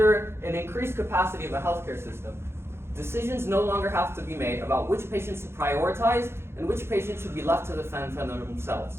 an increased capacity of a healthcare system, decisions no longer have to be made about which patients to prioritize and which patients should be left to defend for themselves,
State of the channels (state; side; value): late; left; 0.12 ms